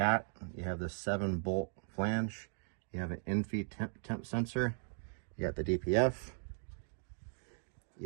you have this 7-bolt flange, you have an in-feed temp sensor, you got the DPF,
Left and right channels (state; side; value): silent; left; 53 dB below the other